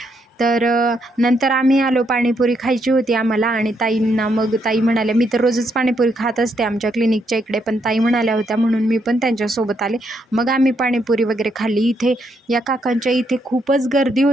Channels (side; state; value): both; normal; correlation 0.76